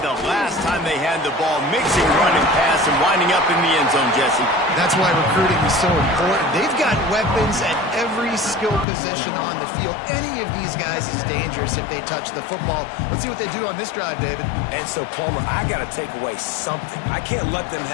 the last time they had the ball, mixing run and pass and winding up in the end zone, Jesse? That's why recruiting is so important. They've got weapons at every skill position on the field. Any of these guys is dangerous if they touch the football. Let's see what they do on this drive, David. And so, Palmer, I got to take away something. I can't let them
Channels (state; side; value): drops out; right; at 8.8 s